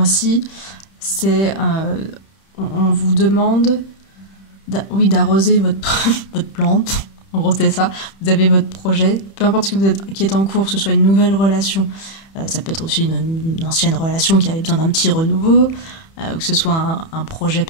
c'est on vous demande d'arroser votre plante. En gros, c'est ça. Vous avez votre projet, peu importe ce que qui est en cours, que ce soit une nouvelle relation, ça peut être aussi une ancienne relation qui avait besoin d'un petit renouveau, que ce soit un projet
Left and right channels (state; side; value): late; right; 31 ms